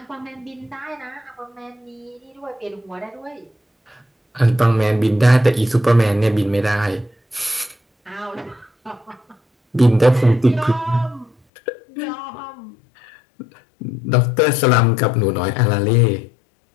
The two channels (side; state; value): right; drops out; at 11.3 s